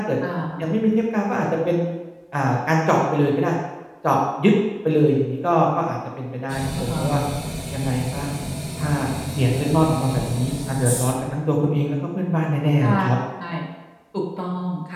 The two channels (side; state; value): both; identical; correlation 1.00